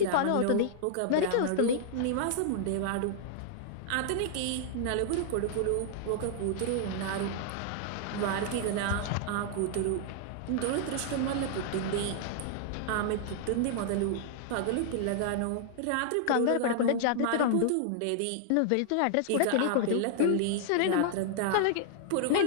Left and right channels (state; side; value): different; both; correlation -0.01